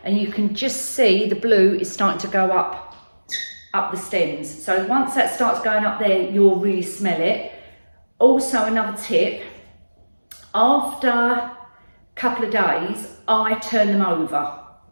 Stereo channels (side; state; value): both; inverted; correlation -1.00